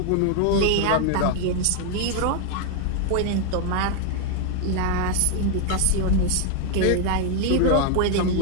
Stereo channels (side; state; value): both; different; correlation 0.01